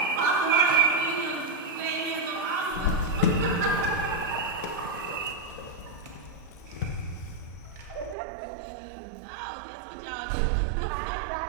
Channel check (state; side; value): drops out; left; at 8.2 s